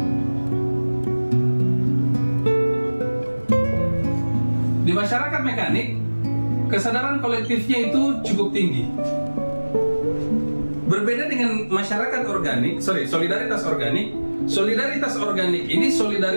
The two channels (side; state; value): both; inverted; correlation -1.00